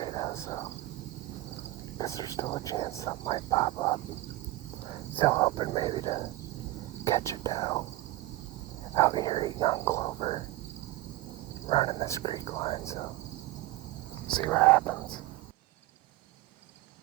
though, so because there's still a chance something might pop up. Still hoping maybe to catch a doe out here eating on clover, running this creek line, so see what happens.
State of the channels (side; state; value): left; quieter; 17.7 dB